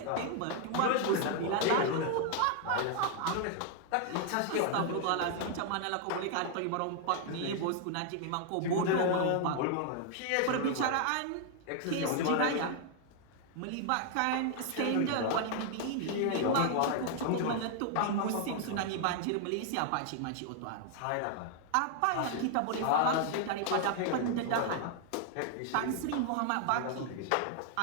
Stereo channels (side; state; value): both; different; correlation 0.00